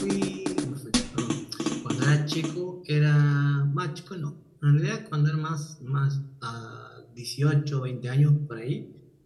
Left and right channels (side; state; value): both; identical; correlation 1.00